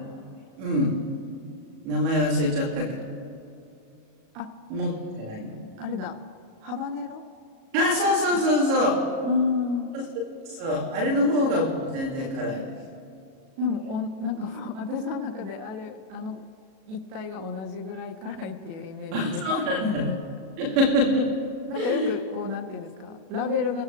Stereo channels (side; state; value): left; late; 37 ms